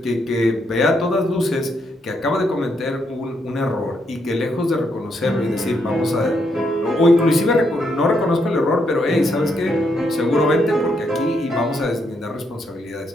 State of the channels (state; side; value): normal; both; correlation 0.77